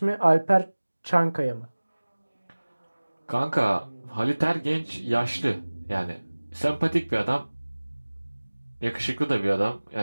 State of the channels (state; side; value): inverted; both; correlation -1.00